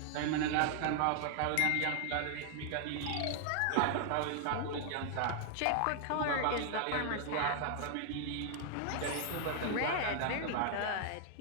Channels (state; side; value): different; both; correlation 0.00